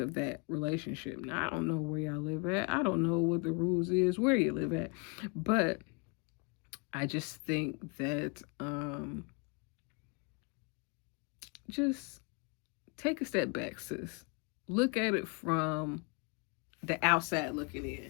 that relationship. Now, I don't know where y'all live at. I don't know what the rules is where you live at, but I just think that just take a step back, sis. Look at it from the outside looking in.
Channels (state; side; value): quieter; right; 33.0 dB